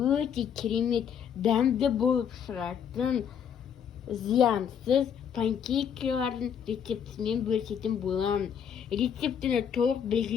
өте керемет дәмді болып шығатын зиянсыз панкейкалардың рецептімен бөлісетін боламын. Рецептіні толық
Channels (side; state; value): right; quieter; 8.1 dB